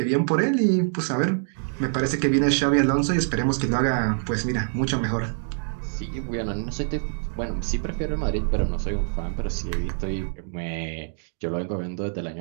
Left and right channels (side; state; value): left; silent; digital silence